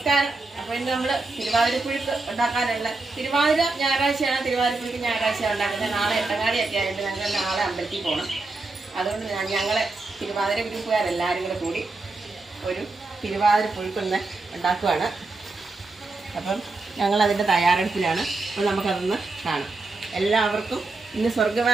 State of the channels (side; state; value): left; quieter; 3.4 dB